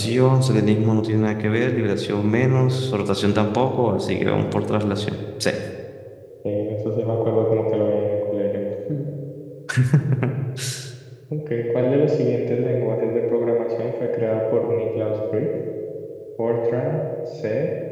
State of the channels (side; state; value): both; identical; correlation 1.00